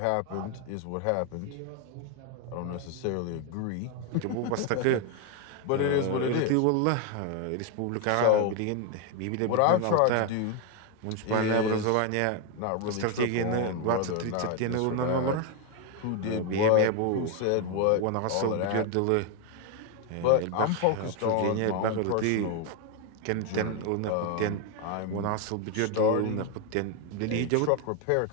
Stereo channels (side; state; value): both; different; correlation 0.01